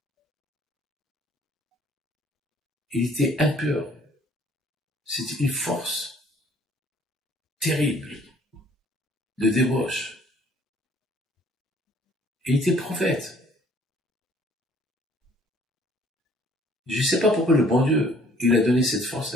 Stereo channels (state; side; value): normal; both; correlation 0.58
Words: Il était impur. C'était une force terrible de débauche. Il était prophète. Je ne sais pas pourquoi le bon Dieu, il a donné cette force